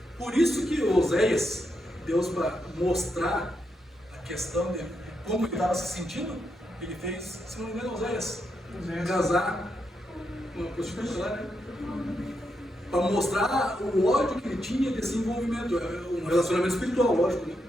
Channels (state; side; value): normal; both; correlation 0.83